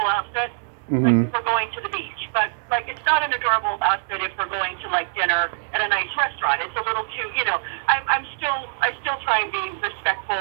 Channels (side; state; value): left; silent; digital silence